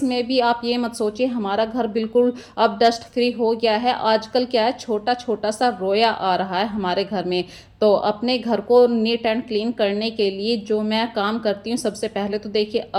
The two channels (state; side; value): identical; both; correlation 1.00